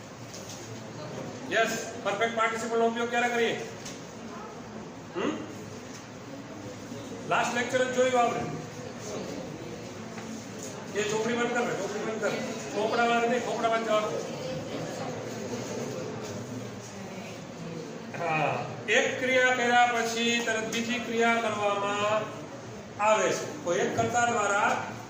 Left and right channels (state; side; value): identical; both; correlation 1.00